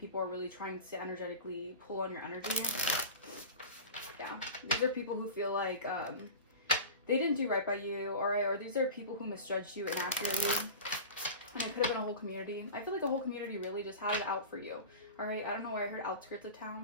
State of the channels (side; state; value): both; inverted; correlation -0.33